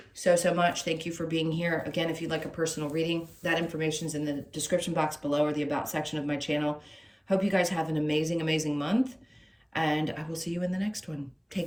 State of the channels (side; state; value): both; identical; correlation 1.00